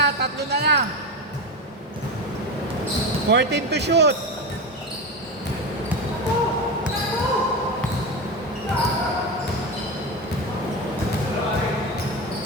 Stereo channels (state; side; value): normal; both; correlation 0.19